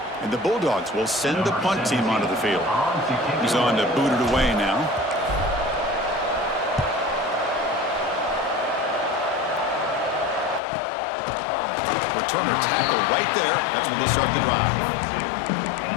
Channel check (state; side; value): drops out; right; at 10.6 s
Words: And the Bulldogs will send the punt team onto the field. He's on to boot it away now. Returner tackle right there. That's when they start the drive.